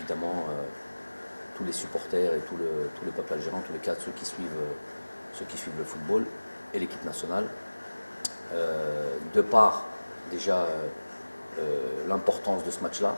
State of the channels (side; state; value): both; inverted; correlation -1.00